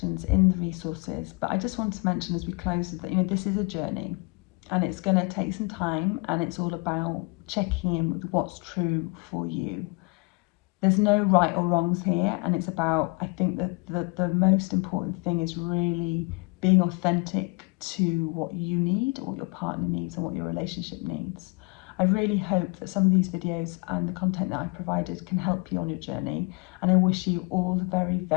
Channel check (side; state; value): right; quieter; 29.9 dB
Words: in the resources, but I just want to mention as we close that, you know, this is a journey and it's going to take some time, and it's all about checking in with what's true for you. There's no right or wrongs here, and it's about, I think that the most important thing is really being authentic to what you need, what your partner needs, and what your relationship needs. I really hope that some of these videos and the content that I've provided can help you on your journey, and I wish you all the very,